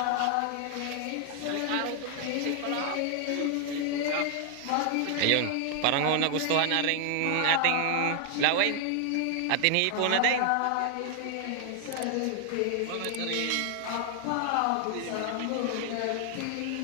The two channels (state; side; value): different; both; correlation 0.00